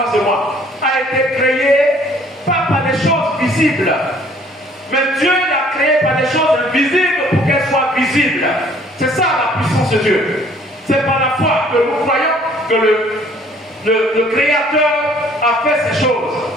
de moi a été créée pas par des choses visibles. Mais Dieu l'a créée par des choses invisibles pour qu'elles soient visibles. C'est ça la puissance de Dieu. C'est par la foi que nous croyons que le Créateur a fait ces choses.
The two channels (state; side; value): normal; both; correlation 0.58